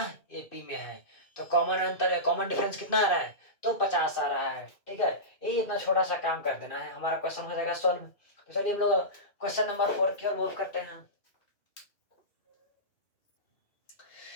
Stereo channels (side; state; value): right; late; 2.4 ms